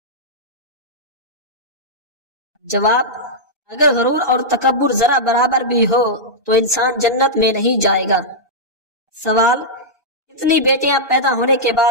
جواب اگر غرور اور تکبر ذرا برابر بھی ہو تو انسان جنت میں نہیں جائے گا۔ سوال اتنی بیٹیاں پیدا ہونے کے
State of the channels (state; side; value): normal; both; correlation -0.09